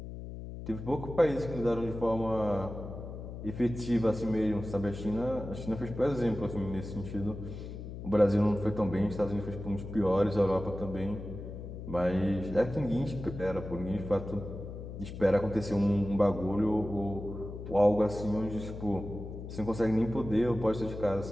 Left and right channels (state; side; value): noise; left; hum, 9 dB below the sound